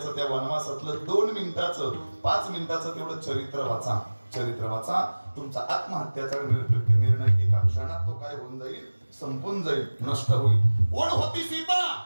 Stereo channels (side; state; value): both; inverted; correlation -1.00